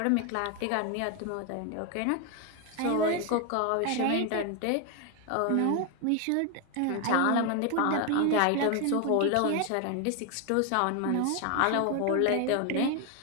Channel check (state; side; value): different; both; correlation 0.01